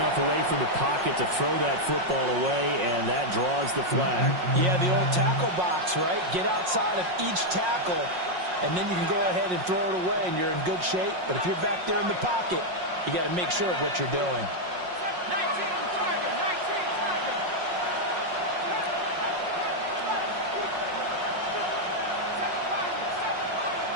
away from the pocket to throw that football away, and that draws the flag. Yeah, the old tackle box, right? Get outside of each tackle, and then you can go ahead and throw it away, and you're in good shape. But if you're back there in the pocket, you got to make sure of what you're doing.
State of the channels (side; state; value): left; late; 5.5 ms